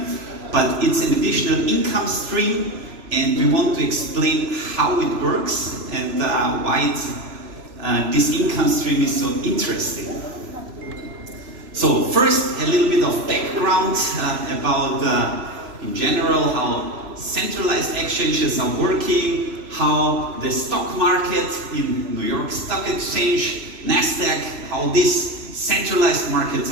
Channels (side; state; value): left; late; 3.0 ms